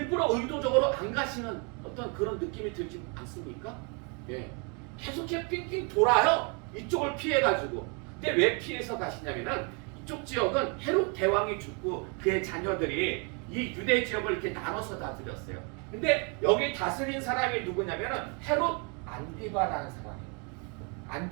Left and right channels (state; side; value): quieter; left; 34.7 dB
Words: 의도적으로 안 가시는 어떤 그런 느낌이 들지 않습니까? 예. 계속 이렇게 삥삥 돌아요. 이쪽을 피해가지고. 근데 왜 피해서 가시냐면은 이쪽 지역은 헤롯 대왕이 죽고 그의 자녀들이 이 유대 지역을 이렇게 나눠서 다스렸어요. 근데 여기 다스린 사람이 누구냐면은 헤롯 안디바라는 사람이에요.